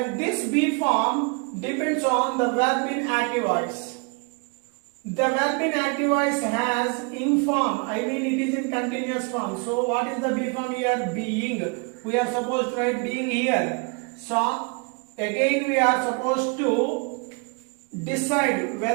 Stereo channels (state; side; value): quieter; left; 33.9 dB